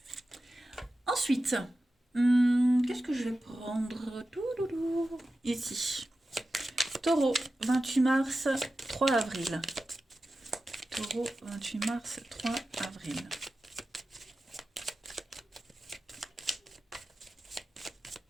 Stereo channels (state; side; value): normal; both; correlation 0.93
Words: Ensuite, qu'est-ce que je vais prendre? Ici. Taureau, 28 mars, 3 avril. Taureau, 28 mars, 3 avril.